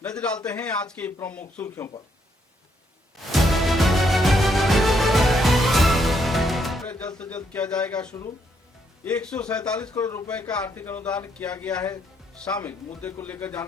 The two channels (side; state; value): both; normal; correlation 0.74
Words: नजर डालते हैं आज की प्रमुख सुर्खियों पर। जल्द से जल्द किया जाएगा शुरू। 147 करोड़ रुपए का आर्थिक अनुदान किया गया है शामिल। मुद्दे को लेकर